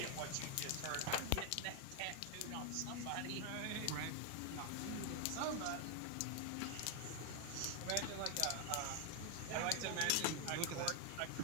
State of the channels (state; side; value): different; both; correlation 0.00